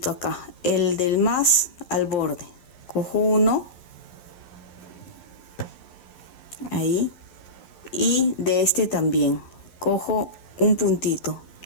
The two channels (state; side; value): late; right; 11 ms